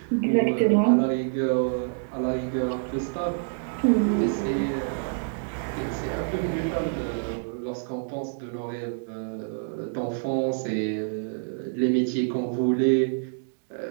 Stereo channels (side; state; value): left; silent; digital silence